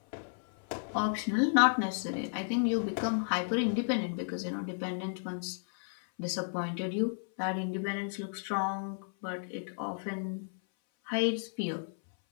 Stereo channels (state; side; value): silent; right; 56 dB below the other